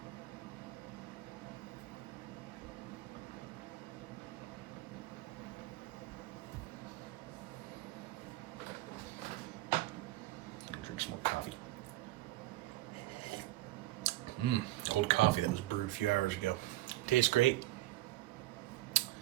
Drink some more coffee. Cold coffee that was brewed a few hours ago. Tastes great.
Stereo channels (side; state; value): left; quieter; 17.0 dB